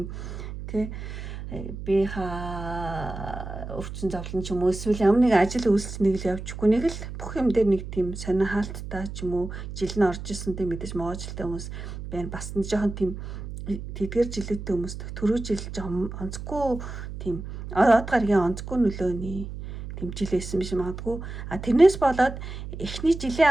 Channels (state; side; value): noise; right; hum, 9 dB below the sound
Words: те би хаа өвчин зовлон ч юм уу эсвэл ямар нэг ажил үйлчлэнийг л явчихгүй нэг л бүх юм дээр нэг тийм сонио хаалттай ч юм уу жил нь орж исэн тийм мэдээж могоо жилтэй хүмүүс байна бас нэг жоохон тийм тэдгээр жилүүдтэй хүмүүс түрүү жил жоохон онцгүй тийм од гаргийн онцгүй нөлөөний тэмжилсэн биш магадгүй. Тэрнээс болоод эхний